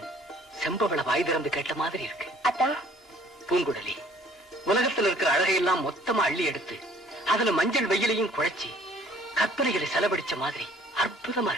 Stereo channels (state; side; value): normal; both; correlation 0.56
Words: செம்பவள வாய் திறந்து கேட்ட மாதிரி இருக்கு. அத்தா, பூங்குழலி, உலகத்துல இருக்கிற அழகையெல்லாம் மொத்தமா அள்ளி எடுத்து அதுல மஞ்சள் வெயிலையும் குழைச்சி கற்பனைகளை செலவழிச்ச மாதிரி அற்புதமா